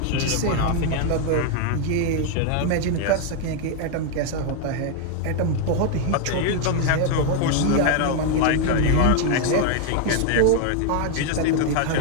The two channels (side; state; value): both; different; correlation 0.00